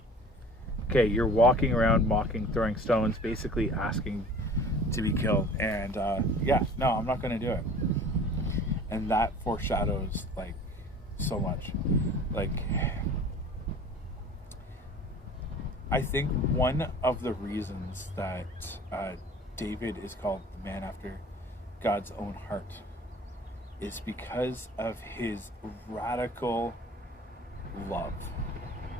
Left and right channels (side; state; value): both; normal; correlation 0.45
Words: okay, you're walking around mocking, throwing stones, basically asking to be killed. And no, I'm not going to do it. And that foreshadows like so much. Like, I think one of the reasons that David is called the man after God's own heart is because of his radical love.